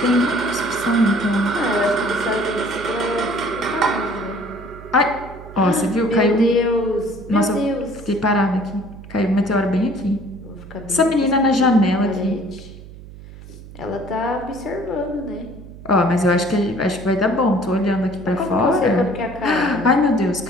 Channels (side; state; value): right; noise; hum, 17 dB below the sound